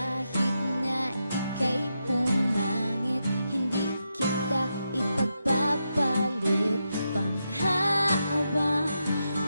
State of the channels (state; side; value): inverted; both; correlation -0.85